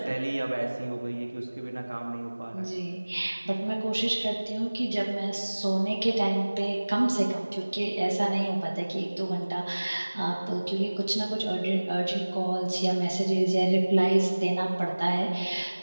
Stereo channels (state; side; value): inverted; both; correlation -1.00